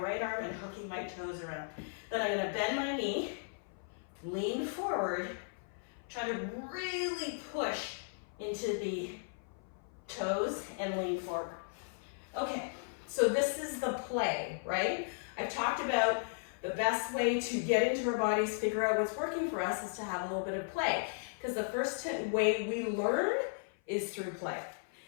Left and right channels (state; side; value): silent; right; 54 dB below the other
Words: arm and hooking my toes around. Then I'm gonna bend my knee, lean forward, try to really push into the toes and lean forward. Okay, so this is the play, right? I've talked about the best way to get into our bodies, figure out what's working for us, is to have a little bit of play. Because the first way we learn is through play.